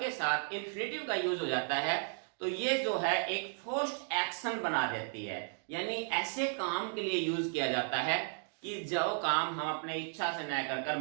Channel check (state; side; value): silent; left; 55 dB below the other